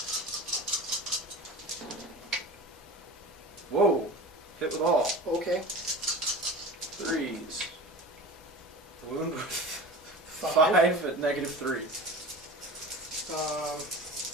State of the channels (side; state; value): both; normal; correlation 0.34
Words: Whoa! Hit with all. Okay. 3s. Wound with 5 at -3.